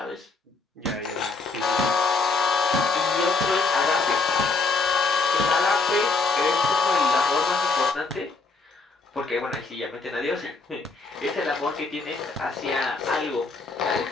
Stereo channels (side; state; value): right; quieter; 4.0 dB